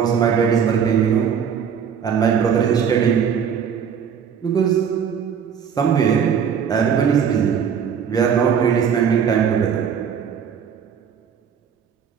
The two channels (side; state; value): left; quieter; 7.5 dB